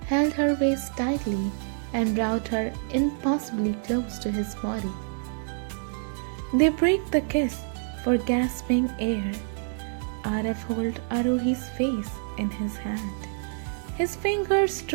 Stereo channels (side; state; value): left; silent; digital silence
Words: held her waist tightly and brought her impossibly close to his body. They break the kiss for gasping air. Arav held Arohi's face in his hand, his fingers